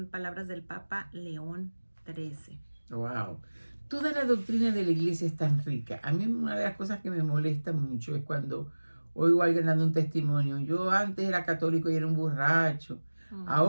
palabras del Papa León XIII. Wow. Toda la doctrina de la iglesia es tan rica. A mí una de las cosas que me molesta mucho es cuando oigo a alguien dando un testimonio. Yo antes era católico y era un borracho.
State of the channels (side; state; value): both; inverted; correlation -1.00